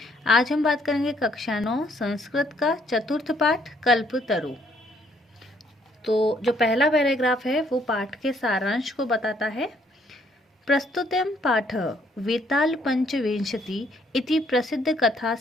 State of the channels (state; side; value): normal; both; correlation 0.67